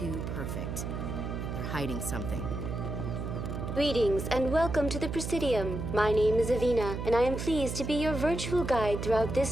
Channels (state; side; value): noise; right; hum, 4 dB below the sound